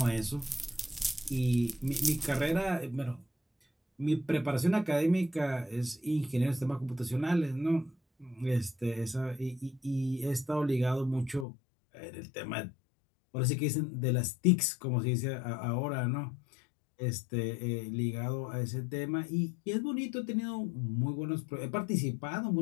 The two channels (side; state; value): right; drops out; at 11.5 s